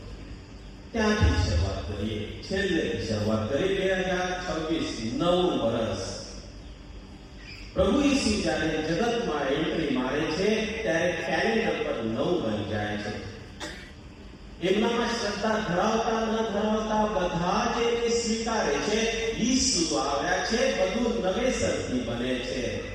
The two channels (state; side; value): identical; both; correlation 1.00